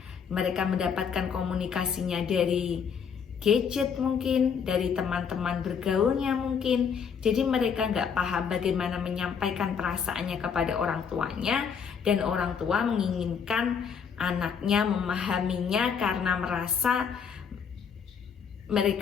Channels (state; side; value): quieter; right; 6.8 dB